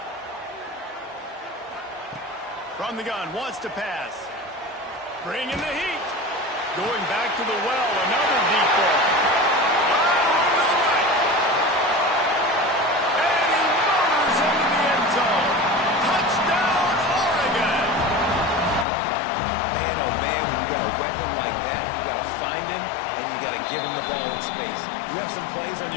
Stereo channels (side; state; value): right; drops out; at 18.9 s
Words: From the gun, wants to pass. Bringing the heat. Going back to the well, another deep ball. And he motors into the end zone. Touchdown, Oregon. Man, oh man, when you got a weapon like that, you got to find him, and you got to give him the ball in space. You have some plays on